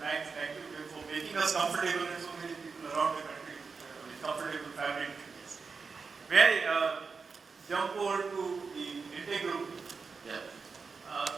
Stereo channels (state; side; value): quieter; left; 4.9 dB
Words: thank you for making us comfortable and so many people around the country with comfortable fabric. Yes. May I jump over to the Linde group? Yeah.